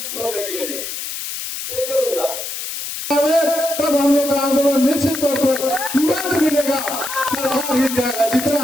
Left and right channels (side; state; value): left; noise; hiss, 6 dB below the sound